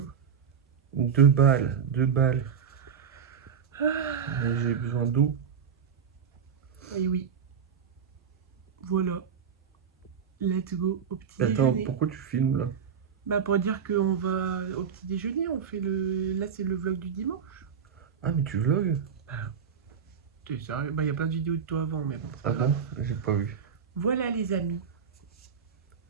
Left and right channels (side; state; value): left; quieter; 7.1 dB